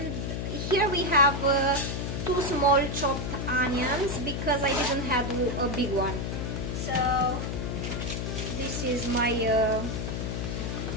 Here we have 2 small chopped onions because I didn't have a big one. So this is my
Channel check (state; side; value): noise; left; hum, 3 dB below the sound